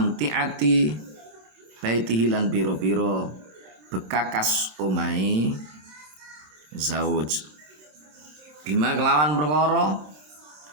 baitihi lan pira-pira bekakas omahe zauj bima kelawan perkara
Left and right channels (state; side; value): late; left; 27 ms